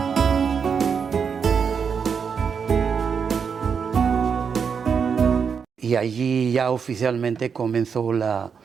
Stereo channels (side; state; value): left; quieter; 6.4 dB